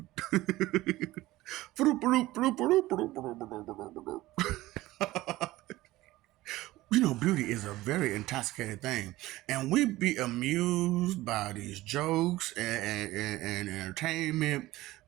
You know, beauty is a very intoxicating thing, and we be amused by these jokes and entertainment.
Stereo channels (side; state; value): left; quieter; 17.5 dB